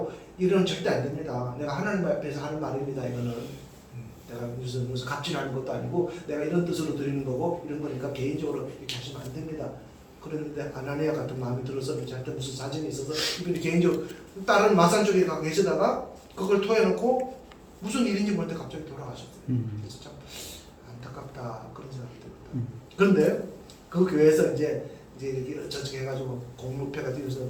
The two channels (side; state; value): both; identical; correlation 1.00